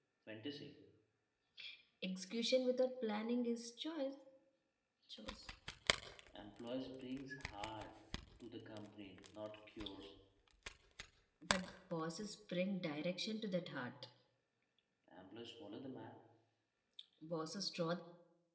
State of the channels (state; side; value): identical; both; correlation 1.00